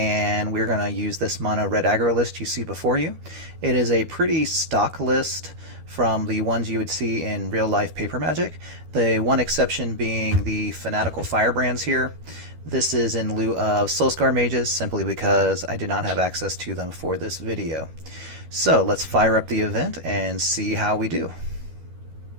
we're going to use this mono red aggro list you see before you. It is a pretty stock list from the ones you would see in real life paper magic. The one exception being the fanatical firebrands here. This is in lieu of Soulscar mages simply because I did not have access to them for this video. So let's fire up the event and see how we do.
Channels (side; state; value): left; late; 12 ms